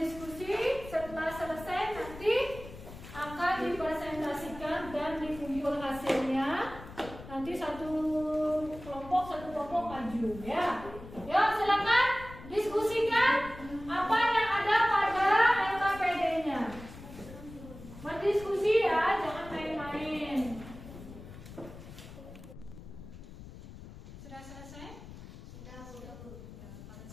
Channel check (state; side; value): noise; left; rumble, 15 dB below the sound